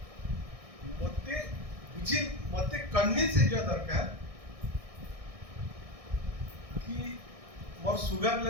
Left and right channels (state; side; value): late; left; 1.6 ms